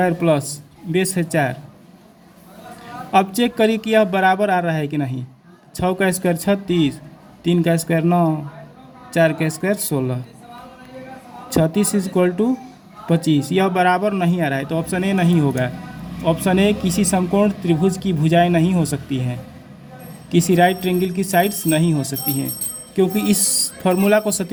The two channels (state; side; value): identical; both; correlation 1.00